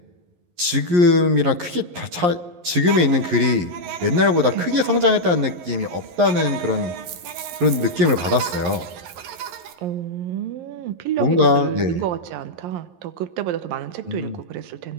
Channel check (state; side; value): late; left; 11 ms